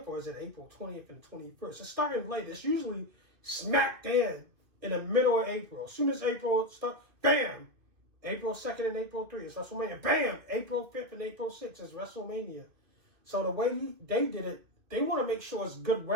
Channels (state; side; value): late; left; 2.5 ms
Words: or is it April 20th and 21st? It's starting late. It's usually smack dead in the middle of April. As soon as April starts, bam! April 2nd and April 3rd is WrestleMania. Bam! April 5th and April 6th is WrestleMania. So the way they did it, they want to make sure it's good